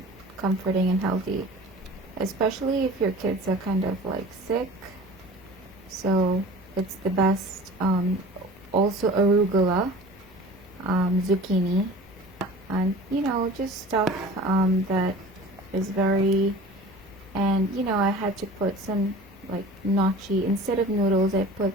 comforting and healthy, especially if your kids are kind of like sick. So it's the best. Also arugula, zucchini, and just stuff that is very, and I had to put some like gnocchi instead of noodles. I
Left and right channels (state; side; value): normal; both; correlation 0.41